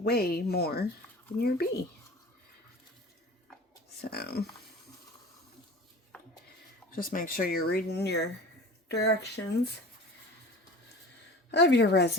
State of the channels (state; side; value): normal; both; correlation 0.38